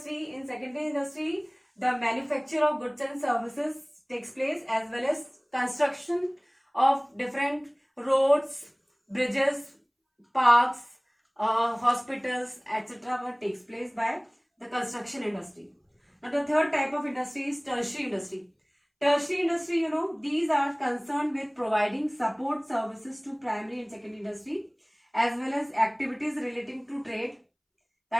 In secondary industry, the manufacture of goods and services takes place, as well as construction of different roads, bridges, parks, hospitals, etc. takes place by the construction industry. Now the third type of industry is tertiary industry. Tertiary industry, these are concerned with providing support services to primary and secondary industry, as well as activities relating to trade,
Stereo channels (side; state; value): both; identical; correlation 1.00